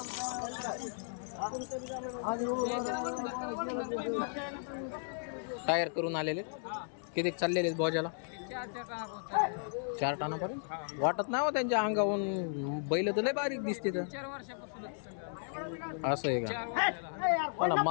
टायर करून आलेले. किती चाललेले भोजाला? 4 टनापर्यंत. वाटत नाही हो त्यांच्या अंगावरून. बैल तर लय बारीक दिसते. 4 वर्षापासूनच असं आहे का? मला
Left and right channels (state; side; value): silent; right; digital silence